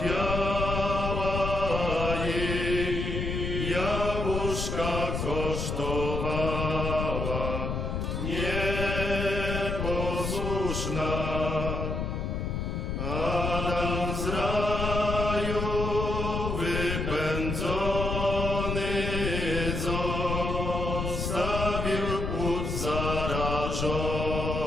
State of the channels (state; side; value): noise; left; rumble, 2 dB below the sound